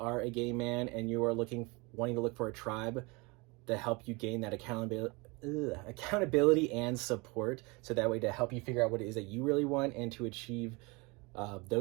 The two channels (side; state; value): left; quieter; 26.9 dB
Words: a gay man and you are wanting to look for a tribe to help you gain that accountability and support, so that way to help you figure out what it is that you really want and to achieve